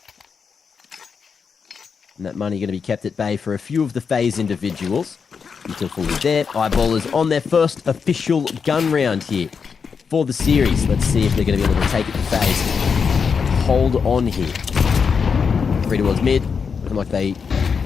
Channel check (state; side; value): quieter; right; 5.9 dB